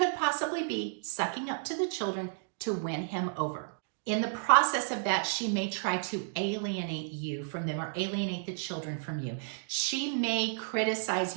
possibly be sucking up to the children to win him over. In the process of that, she may try to alienate you from them or alienate the children from you. She may criticize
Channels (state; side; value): silent; left; digital silence